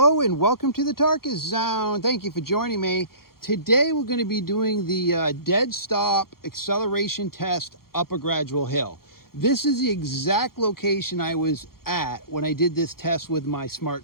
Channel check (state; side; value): late; right; 0.93 ms